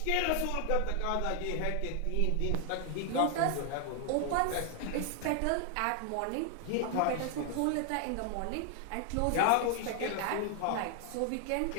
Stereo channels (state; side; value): different; both; correlation 0.00